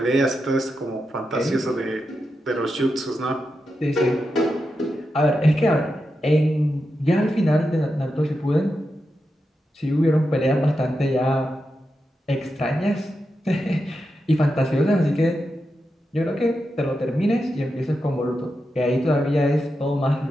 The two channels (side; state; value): both; normal; correlation 0.88